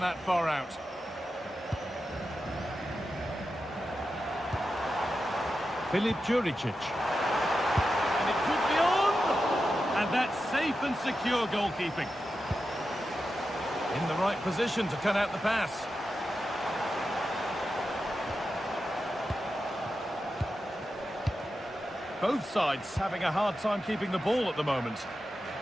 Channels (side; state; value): both; normal; correlation 0.90